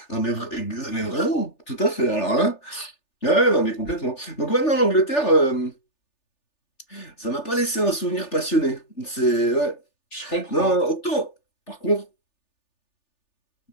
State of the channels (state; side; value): late; right; 3.4 ms